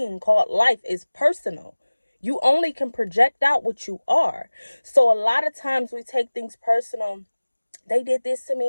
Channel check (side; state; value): both; inverted; correlation -1.00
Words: called life is personal. You only can project out what you are. So a lot of times we take things personal. They did this to